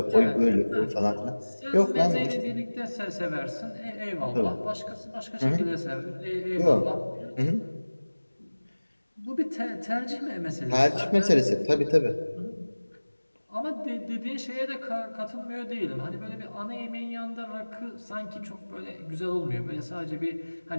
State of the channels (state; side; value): inverted; both; correlation -1.00